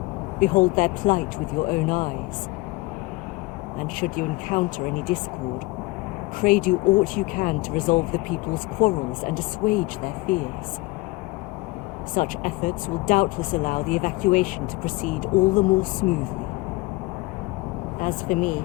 Behold their plight with your own eyes. And should you encounter any discord, pray do aught you can to resolve the people's quarrels and assuage their fears. Such efforts will doubtless allow the evacuation to proceed all the more smoothly. As for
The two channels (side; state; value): right; quieter; 22.5 dB